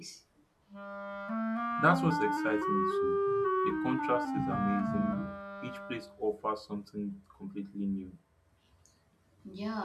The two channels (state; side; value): identical; both; correlation 1.00